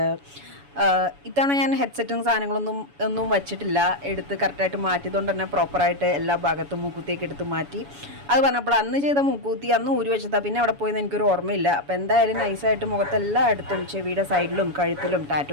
ഇത്തവണ ഞാൻ ഹെഡ്സെറ്റും സാധനങ്ങളൊന്നും വച്ചിട്ടില്ല, എടുത്ത് കറക്റ്റായിട്ട് മാറ്റിയതുകൊണ്ട് തന്നെ പ്രോപ്പറായിട്ട് എല്ലാ ഭാഗത്തും മൂക്കുത്തിയൊക്കെ എടുത്ത് മാറ്റി. അത് പറഞ്ഞപ്പോൾ അന്ന് ചെയ്ത മൂക്കുത്തി അന്ന് ഊരി വെച്ചതാ, പിന്നെ അവിടെ പോയെന്ന് എനിക്കൊരു ഓർമ്മയില്ല. അപ്പോൾ എന്തായാലും നൈസായിട്ട് മുഖത്തെല്ലാം എടുത്തും ചെവിയുടെ സൈഡിലും കഴുത്തിലും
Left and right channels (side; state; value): left; late; 7.1 ms